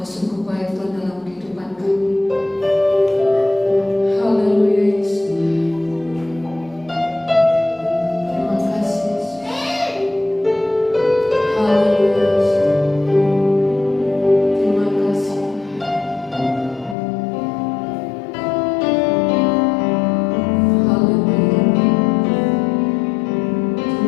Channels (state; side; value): drops out; right; at 16.9 s